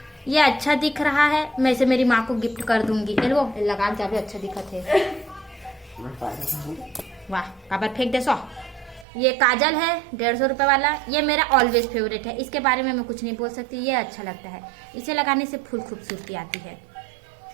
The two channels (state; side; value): drops out; left; at 9.1 s